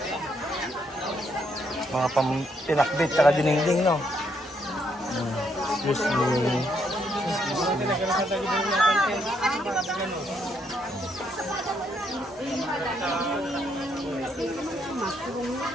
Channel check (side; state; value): both; normal; correlation 0.74